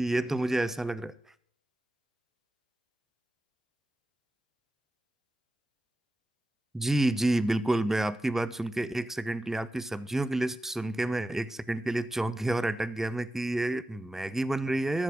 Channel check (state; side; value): normal; both; correlation 0.94